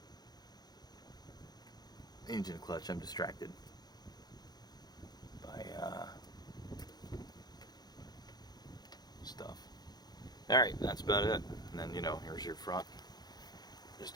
engine clutch. I'm distracted by stuff. Alright, that's about it. And then, here's your front. Just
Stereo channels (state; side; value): late; right; 0.19 ms